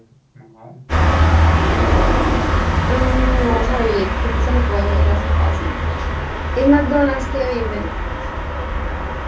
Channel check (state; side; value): identical; both; correlation 1.00